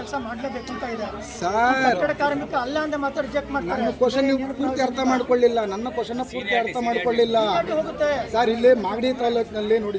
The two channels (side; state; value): both; identical; correlation 1.00